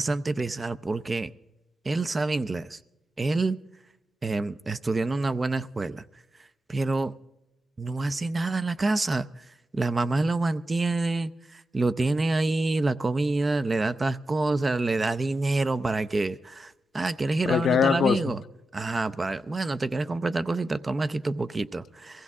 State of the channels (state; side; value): normal; both; correlation 0.90